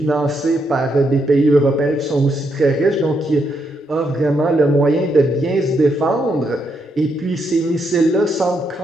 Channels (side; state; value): both; normal; correlation 0.78